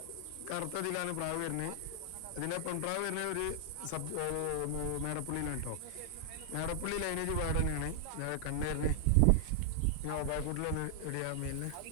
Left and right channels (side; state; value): both; different; correlation 0.00